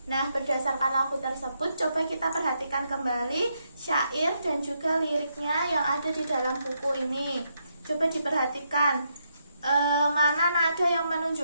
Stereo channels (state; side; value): inverted; both; correlation -0.79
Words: Nah, berdasarkan lagu tersebut, coba kita perhatikan kembali syair dan juga liriknya yang ada di dalam buku ini. Coba diperhatikan mana nada yang